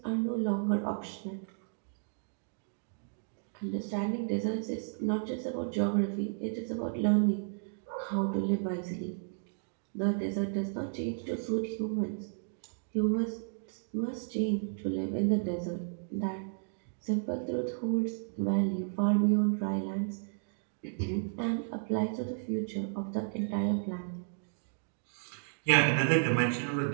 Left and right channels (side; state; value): left; silent; digital silence